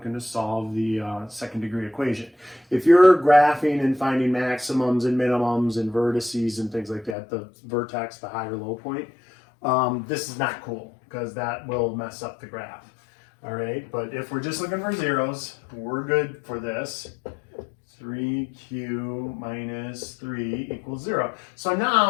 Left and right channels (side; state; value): right; drops out; at 7.2 s